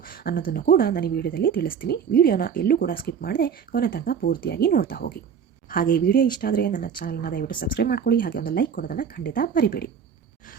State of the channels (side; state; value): left; quieter; 7.3 dB